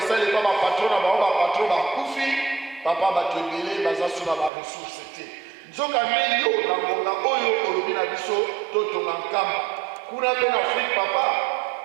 bapatron na bango bapatron bakufi papa bato ebele baza so na baresource te nzoka nde yo na ngonga oyo olobi na biso totonga nkamba kuna mpe na afrique papa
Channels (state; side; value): drops out; left; at 4.5 s